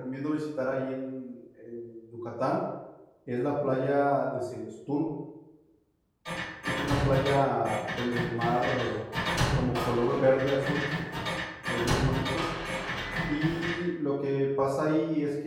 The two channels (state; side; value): identical; both; correlation 1.00